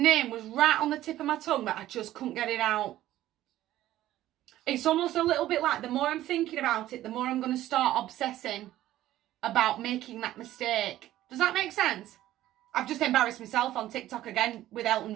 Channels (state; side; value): quieter; left; 14.1 dB